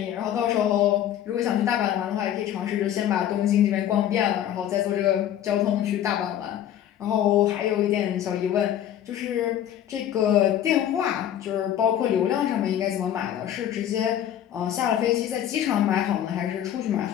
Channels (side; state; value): right; quieter; 10.9 dB